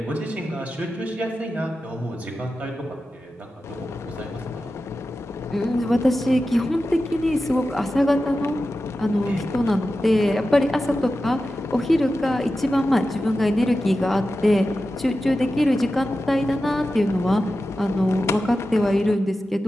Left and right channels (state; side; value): normal; both; correlation 0.93